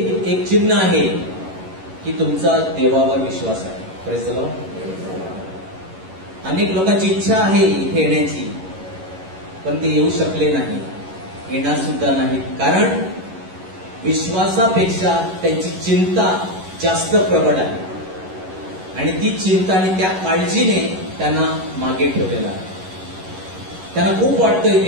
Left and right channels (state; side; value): late; left; 11 ms